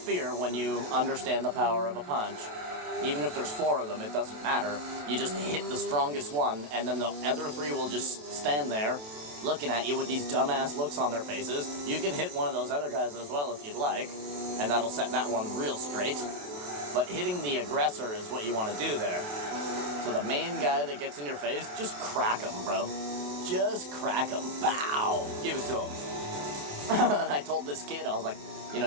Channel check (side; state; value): left; late; 27 ms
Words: when you understand the power of a punch. Even if there's 4 of them, it doesn't matter. You just hit the strongest one, and then the other 3 will just stand there, looking at you with these dumbass looks on their faces. You can hit one of those other guys as well if you'd like, and that'll set that one real straight. But hitting the aggressor is what you want to do there. So the main guy that gets in your face, just crack him, bro. Just crack him. Bow! Give it to him. And I told this kid, I was like, you know,